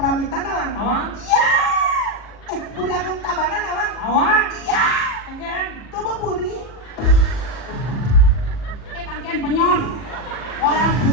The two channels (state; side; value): late; right; 40 ms